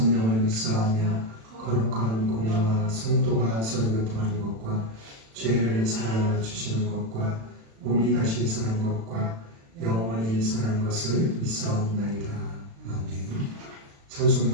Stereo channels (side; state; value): left; late; 36 ms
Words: 믿사오며 거룩한 공예와 성도가 서로 교통하는 것과 죄를 사하여 주시는 것과 몸이 다시 사는 것과 영원히 사는 것을 믿사옵나이다. 아멘.